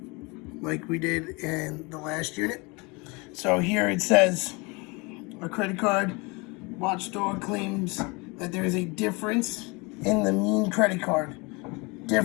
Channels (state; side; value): quieter; right; 27.4 dB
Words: like we did in the last unit. So here it says a credit card watchdog claims that there is a difference in the mean credit card.